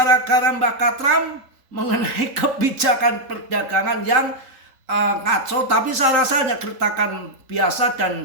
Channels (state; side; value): late; left; 3.8 ms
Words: Mbak Katram mengenai kebijakan perdagangan yang ngaco, tapi saya rasa hanya gertakan biasa